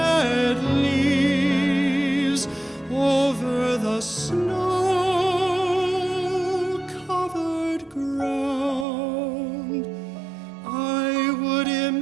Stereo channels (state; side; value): drops out; left; at 8.8 s